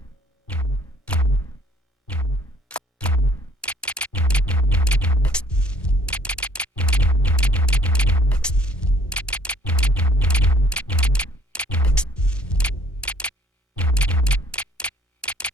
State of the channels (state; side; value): normal; both; correlation 0.59